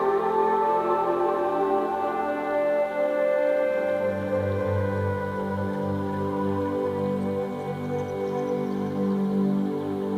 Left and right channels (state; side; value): identical; both; correlation 1.00